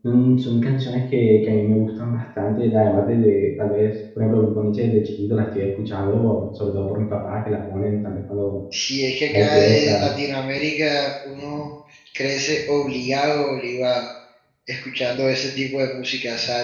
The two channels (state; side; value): identical; both; correlation 1.00